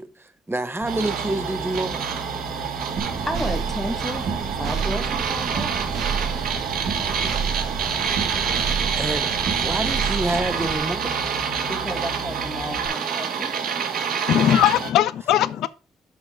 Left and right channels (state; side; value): normal; both; correlation 0.49